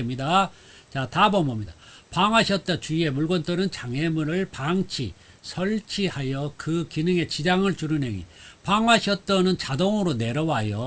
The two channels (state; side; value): identical; both; correlation 1.00